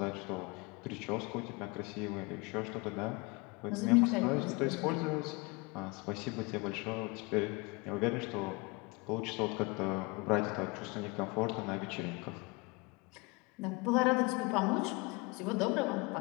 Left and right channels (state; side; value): quieter; right; 26.9 dB